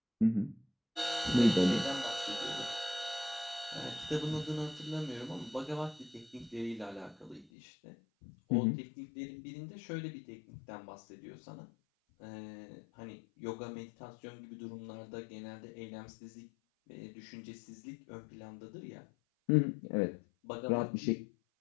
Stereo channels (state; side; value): drops out; right; at 7.5 s